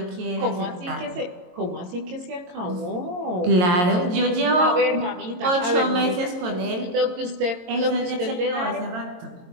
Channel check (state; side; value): late; left; 22 ms